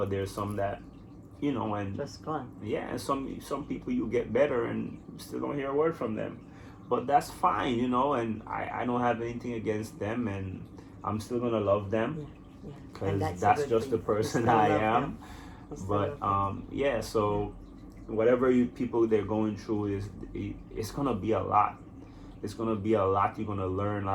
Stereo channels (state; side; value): identical; both; correlation 1.00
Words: there's some that, and Just gone. yeah, and some people you get better and still don't hear a word from them. But that's fine, and I don't have anything against them, and I'm still gonna love them, Yeah. because And that's a good just the thing. You person still I love am. them. You still But love them. yeah, so whatever people they're going through it's gonna be a lot. It's gonna be a lot. You're gonna learn a